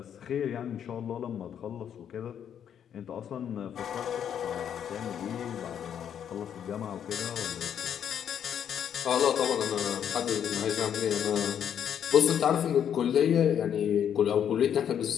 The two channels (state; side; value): quieter; right; 8.9 dB